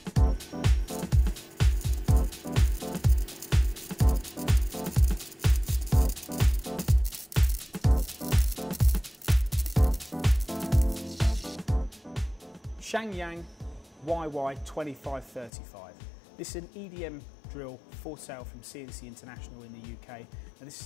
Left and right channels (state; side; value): drops out; right; at 15.5 s